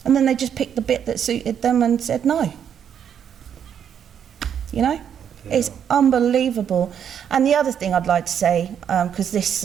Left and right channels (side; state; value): left; quieter; 8.5 dB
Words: And then they just picked the bit that suited them and said no. You know? It's unbelievable. And the other thing I'd like to say,